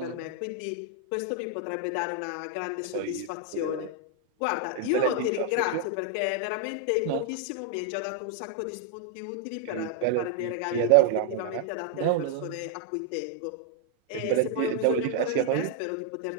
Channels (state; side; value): different; both; correlation 0.00